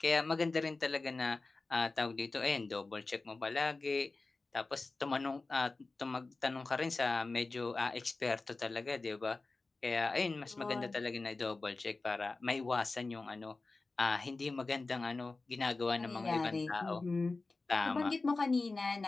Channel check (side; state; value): right; quieter; 3.6 dB